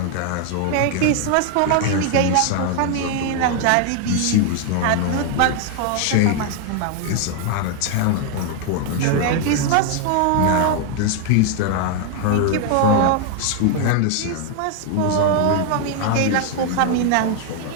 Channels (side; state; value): both; different; correlation 0.00